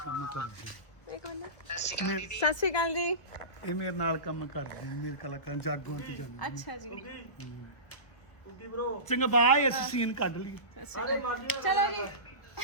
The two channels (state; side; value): late; right; 1.3 ms